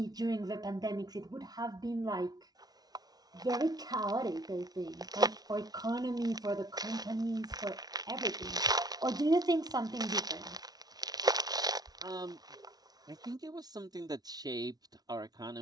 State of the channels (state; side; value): late; left; 0.19 ms